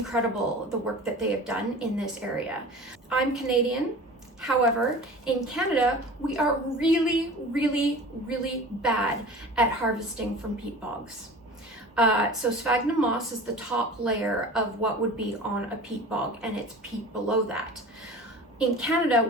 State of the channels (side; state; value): both; normal; correlation 0.38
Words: the work that they have done in this area. I'm Canadian. However, in Canada, we are really, really, really bad at harvesting from peat bogs. So sphagnum moss is the top layer of what would be on a peat bog, and it's peat below that. In Canada,